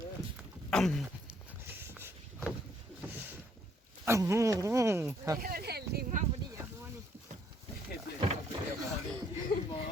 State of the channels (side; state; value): both; normal; correlation 0.68